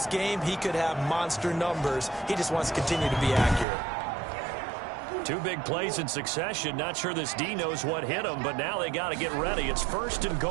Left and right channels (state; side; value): drops out; left; at 3.7 s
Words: game, he could have monster numbers. He just wants to continue to be accurate. 2 big plays in succession. Not sure this D knows what hit him, but now they got to get ready. It's 1st and